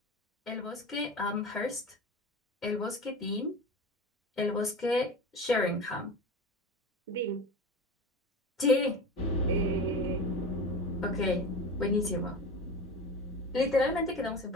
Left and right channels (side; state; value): both; normal; correlation 0.30